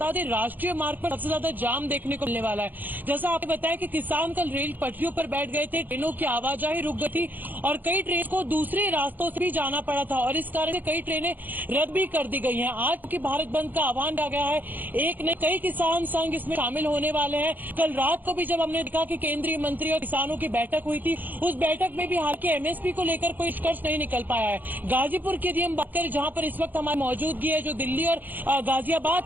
दें राष्ट्रीय मार्ग पर सबसे ज्यादा जाम देखने को मिलने वाला है। जैसा आपने बताया कि किसान कल रेल पटरियों पर बैठ गए थे, ट्रेनों की आवाजाही रुक गई थी और कई ट्रेन को दूसरे रास्तों से भी जाना पड़ा था और इस कारण से कई ट्रेनें रद्द भी कर दी गई हैं। आज की भारत बंद का आह्वान किया गया है, एक ने कई किसान संघ इसमें शामिल होने वाले हैं। कल रात को भी जब हमने देखा कि केंद्रीय मंत्री और किसानों की बैठक हुई थी, उस बैठक में भी हालांकि MSP को लेकर कोई निष्कर्ष नहीं निकल पाया है। गाजीपुर की यदि हम बात करें, जहां पर इस वक्त हमारी मौजूदगी है, जो दिल्ली और गाजियाबाद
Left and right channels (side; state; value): left; late; 0.086 ms